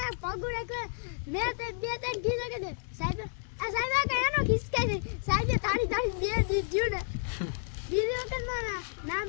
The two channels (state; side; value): silent; right; 57 dB below the other